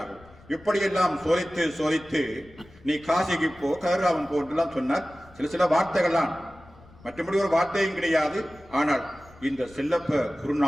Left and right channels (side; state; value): left; noise; rumble, 24 dB below the sound